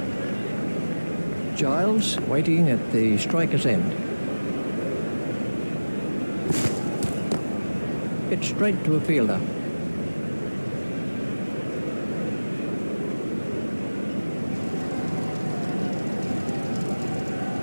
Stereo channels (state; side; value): inverted; both; correlation -1.00